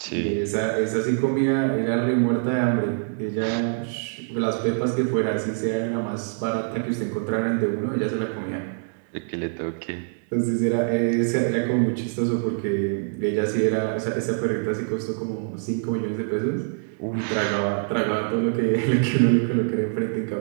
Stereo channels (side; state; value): left; silent; 62 dB below the other